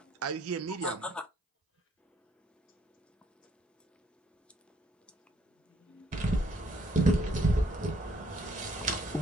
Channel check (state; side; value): normal; both; correlation 0.66